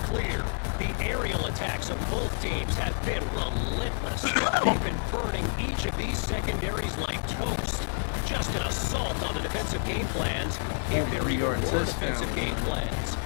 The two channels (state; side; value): silent; right; 59 dB below the other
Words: the aerial attacks of both teams have been relentless. They've been burning each of these secondaries like toast. Just an assault on the defensive game plans if there are Yard poor touchdown. defensive game plans.